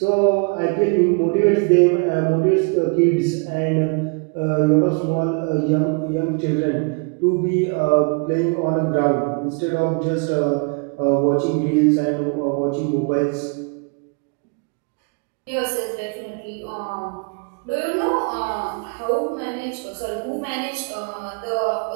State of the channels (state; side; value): quieter; left; 34.5 dB